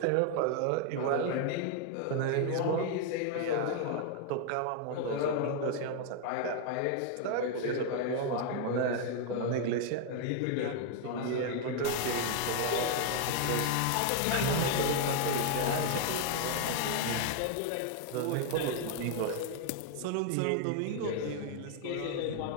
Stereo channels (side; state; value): both; different; correlation 0.00